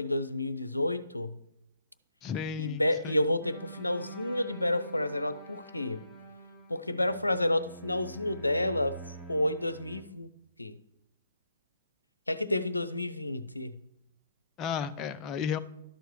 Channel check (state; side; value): inverted; both; correlation -0.77